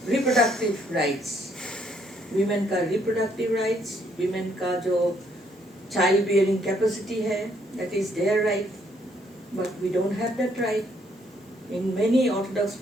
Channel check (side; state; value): both; normal; correlation 0.69